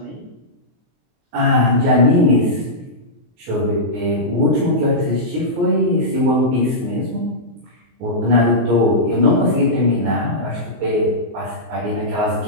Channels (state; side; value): late; left; 23 ms